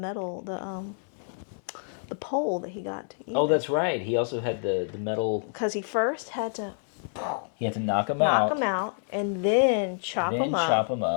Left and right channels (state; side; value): silent; right; digital silence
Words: the pole that he got either. Oh, that's right. He also had the metal. Because he first had to Knock him out. and then chop him